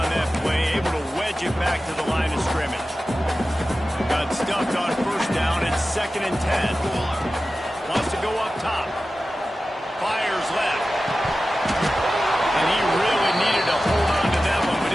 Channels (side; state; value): both; normal; correlation 0.94